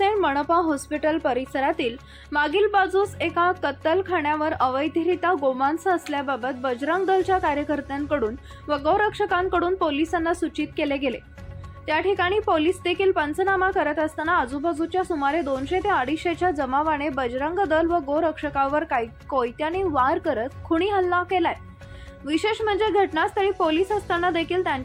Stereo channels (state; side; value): identical; both; correlation 1.00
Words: मनपा हॉस्पिटल परिसरातील मागील बाजूस एका कत्तलखान्यावर अवैधरित्या गोमांस असल्याबाबत बजरंग दलच्या कार्यकर्त्यांकडून व गौरक्षकांकडून पोलिसांना सूचित केले गेले। त्या ठिकाणी पोलीस देखील पंचनामा करत असताना आजूबाजूच्या सुमारे 200 ते 250च्या जमावाने बजरंग दल व गोरक्षकावर कोयत्याने वार करत खुनी हल्ला केलाय। विशेष म्हणजे घटनास्थळी पोलीस असताना देखील